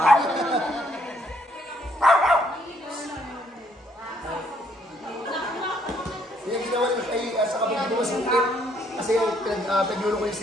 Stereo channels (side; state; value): both; normal; correlation 0.69